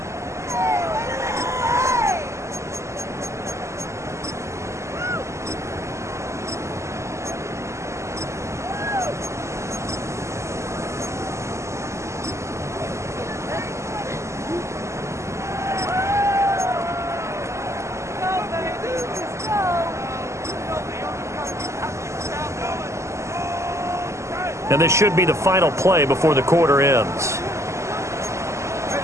And this should be the final play before the quarter ends.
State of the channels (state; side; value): late; left; 0.13 ms